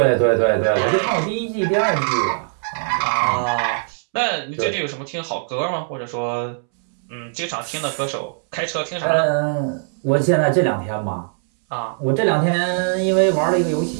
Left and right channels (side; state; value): left; silent; 65 dB below the other